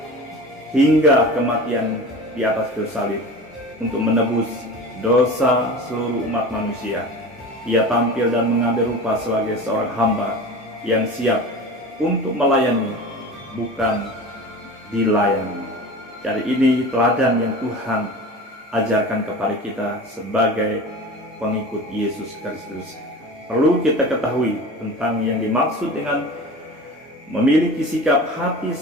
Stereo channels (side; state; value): both; normal; correlation 0.34